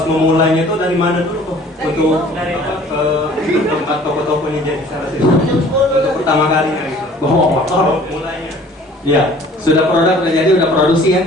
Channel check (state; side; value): normal; both; correlation 0.51